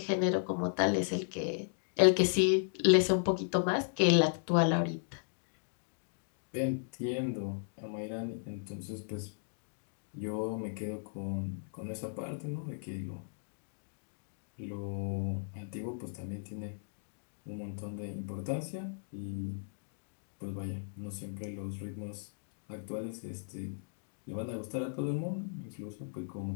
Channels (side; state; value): right; silent; digital silence